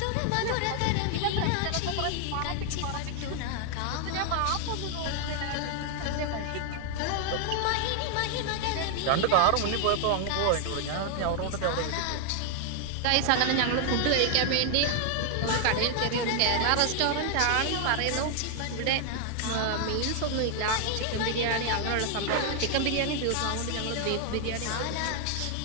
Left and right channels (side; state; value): both; different; correlation 0.00